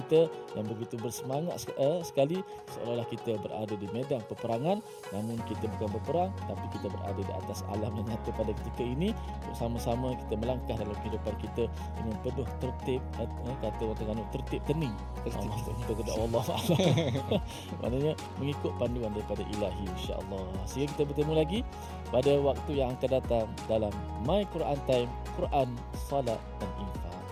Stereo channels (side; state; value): both; identical; correlation 1.00